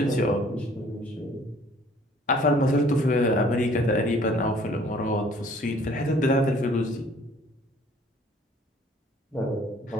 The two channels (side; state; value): both; normal; correlation 0.56